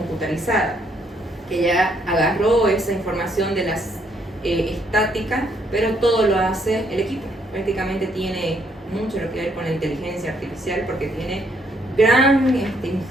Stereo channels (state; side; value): normal; both; correlation 0.71